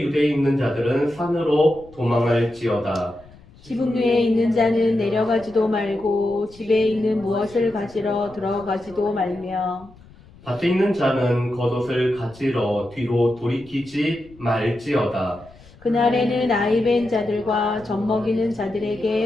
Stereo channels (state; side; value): noise; left; rumble, 24 dB below the sound